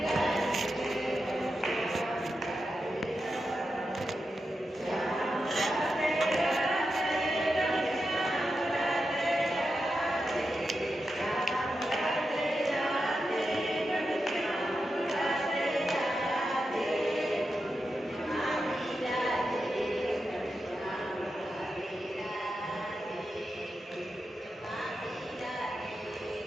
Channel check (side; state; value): both; normal; correlation 0.89